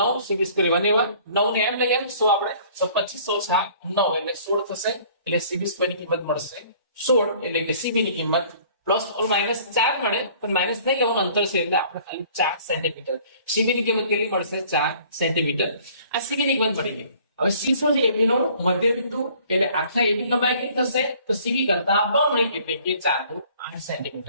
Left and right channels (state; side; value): inverted; both; correlation -0.54